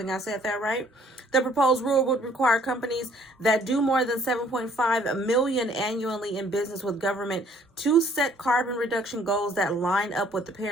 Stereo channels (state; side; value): normal; both; correlation 0.60